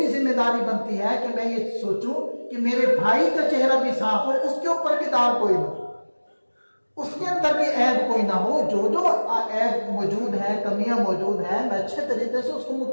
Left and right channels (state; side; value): inverted; both; correlation -1.00